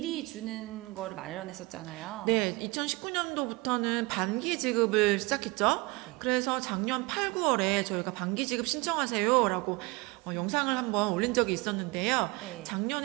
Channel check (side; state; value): left; quieter; 24.6 dB